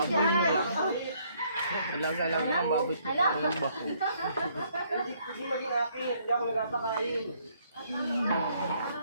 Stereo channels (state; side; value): inverted; both; correlation -0.67